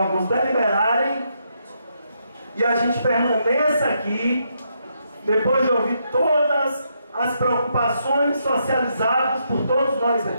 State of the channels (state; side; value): inverted; both; correlation -0.78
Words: deliberarem e a gente permaneça aqui, depois de ouvir todas as preocupações socializadas por todos nós